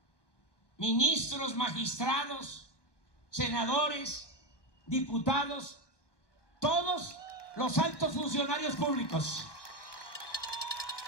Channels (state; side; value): late; right; 1.2 ms